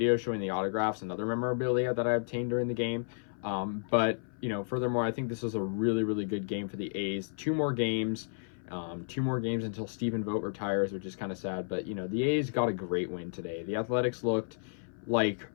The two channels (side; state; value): right; silent; 56 dB below the other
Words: showing the autographs and other memorabilia that I obtained during the game. But furthermore, I think this was a really, really good game for the A's. 2 more games until Stephen Vogt retires, which is kind of sad. But, the A's got a great win today. The Athletics looked like